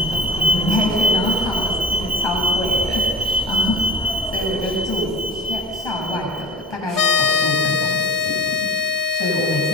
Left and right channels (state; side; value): normal; both; correlation 0.33